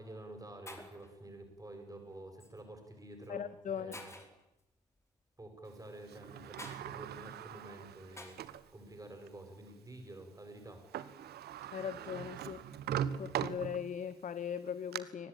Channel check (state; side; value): normal; both; correlation 0.35